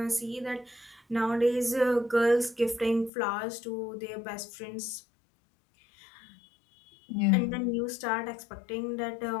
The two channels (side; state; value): right; drops out; at 3.1 s